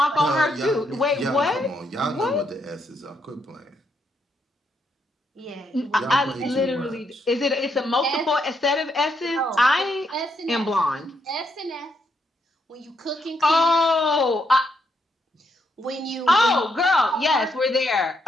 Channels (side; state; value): both; normal; correlation 0.77